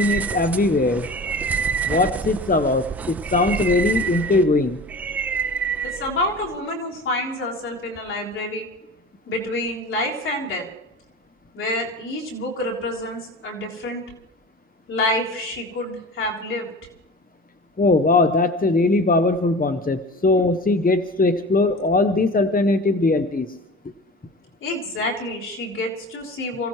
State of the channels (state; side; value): normal; both; correlation 0.36